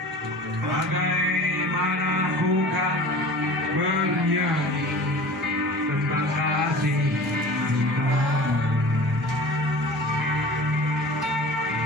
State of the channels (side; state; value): both; normal; correlation 0.39